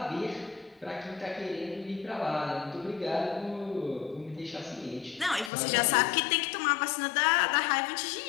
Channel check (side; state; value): right; drops out; at 5.5 s